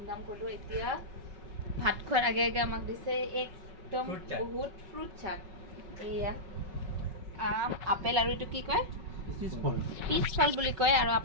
কৰিলো এতিয়া ভাত খোৱাৰ আগে আগে আমাক দিছে একদম বহুত ফ্ৰুট চাট এয়া আপেল আৰু এটো কি কয় পিছফল বুলি কয় আৰু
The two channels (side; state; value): left; late; 5.4 ms